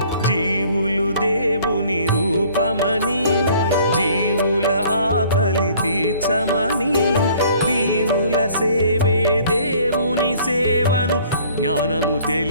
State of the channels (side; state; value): both; inverted; correlation -0.56